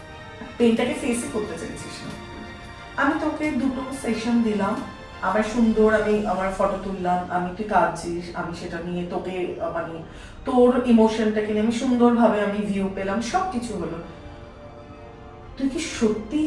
পেইনটাকে ফেসই করতে চাইছিস না। আমি তোকে 2টো সেশন দিলাম, আমার সুন্দর, আমি আমার ফটো তুললাম, আমি তুই কাঁদছিস, আমি সেটা নিয়ে তোকে মানে তোর ইমোশনটাকে নিয়ে আমি সুন্দরভাবে আমি ভিউ পেলাম, সব কিছু হলো। তুই কি সত্যি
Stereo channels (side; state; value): both; identical; correlation 1.00